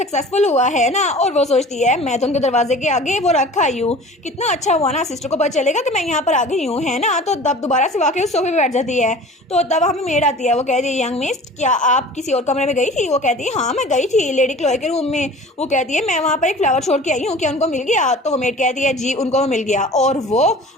हुआ है ना। और वो सोचती है मैं तो उनके दरवाजे के आगे वो रखा आई हूँ, कितना अच्छा हुआ ना, सिस्टर को पता चलेगा कि मैं यहाँ पर आ गई हूँ है ना। तो तब दोबारा से वाकई उस सोफे पे बैठ जाती है। तो तब हमें मेड आती है। वो कहती है यंग मिस क्या आप किसी और कमरे में गई थी। वो कहती है हाँ मैं गई थी लेडी क्लोई के रूम में। वो कहती है मैं वहाँ पर एक फ्लावर छोड़ के आई हूँ, क्या उनको मिल गया। तो वो मेड कहती है जी उनको मिल गया। और वो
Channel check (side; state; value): both; normal; correlation 0.42